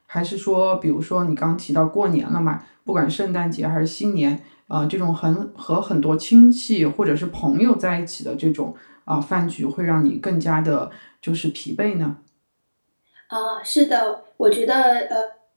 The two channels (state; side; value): inverted; both; correlation -1.00